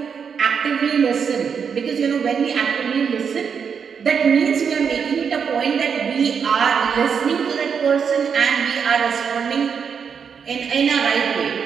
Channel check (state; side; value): quieter; left; 6.7 dB